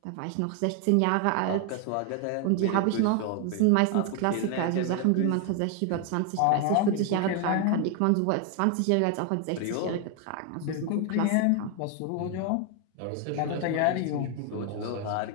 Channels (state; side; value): different; both; correlation 0.01